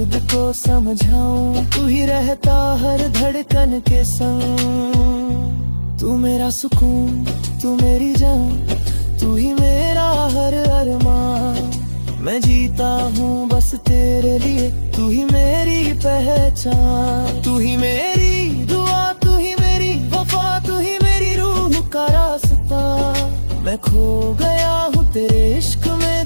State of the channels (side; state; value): both; inverted; correlation -1.00